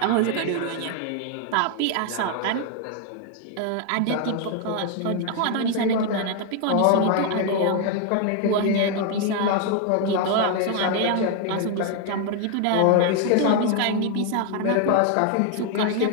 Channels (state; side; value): different; both; correlation 0.01